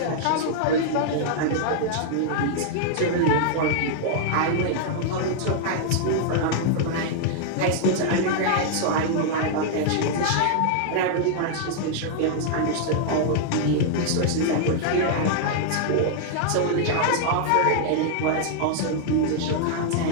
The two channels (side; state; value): both; different; correlation -0.01